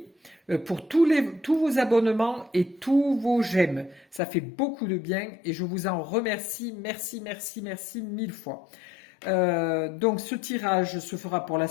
pour tous vos abonnements et tous vos j'aime. Ça fait beaucoup de bien et je vous en remercie. Merci, merci, merci 1000 fois. Donc ce tirage se fera pour la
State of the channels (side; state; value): right; drops out; at 4.2 s